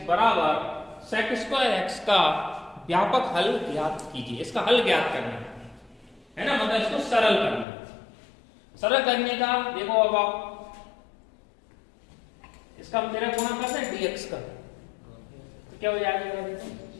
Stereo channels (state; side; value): drops out; right; at 7.7 s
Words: बराबर sec²x का व्यापक हल ज्ञात कीजिए। इसका हल ज्ञात करना है ना, मतलब इसको सरल करना है। सरल करने का देखो, अब आप इसका हम तेरा गुणा करते हैं dx का, तो क्या हो जाएगा, देखो